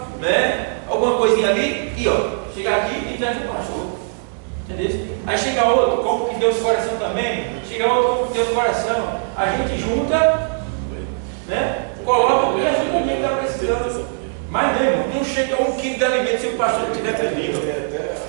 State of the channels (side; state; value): left; silent; digital silence